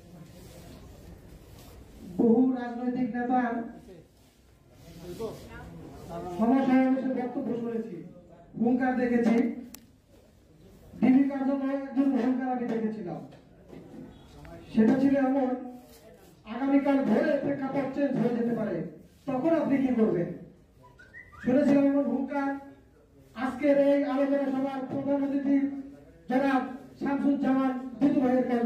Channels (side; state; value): both; identical; correlation 1.00